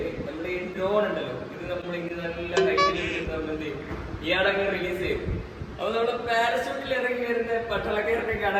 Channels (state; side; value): identical; both; correlation 1.00